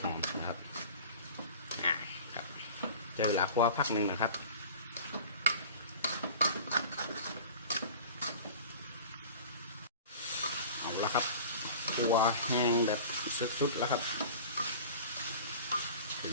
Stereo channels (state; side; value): inverted; both; correlation -0.40